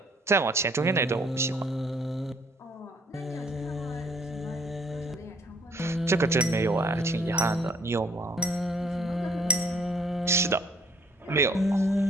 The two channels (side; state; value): both; normal; correlation 0.61